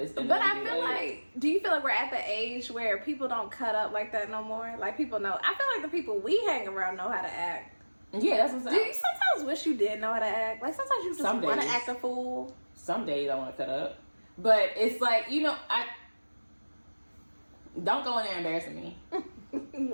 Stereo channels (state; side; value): inverted; both; correlation -1.00